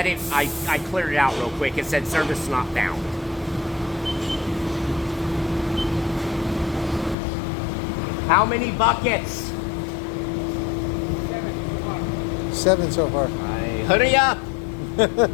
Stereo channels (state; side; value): drops out; right; at 7.2 s